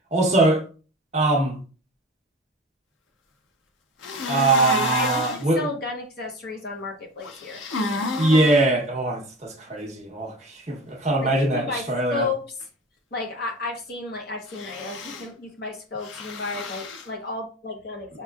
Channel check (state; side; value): normal; both; correlation 0.34